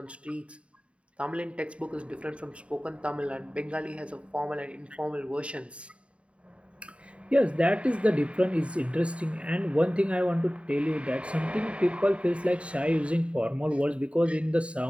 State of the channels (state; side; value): late; left; 0.061 ms